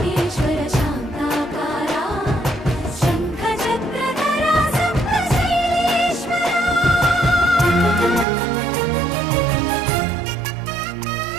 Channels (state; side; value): drops out; left; at 8.2 s